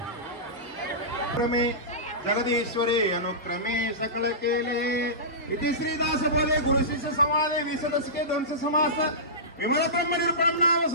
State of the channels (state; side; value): normal; both; correlation -0.20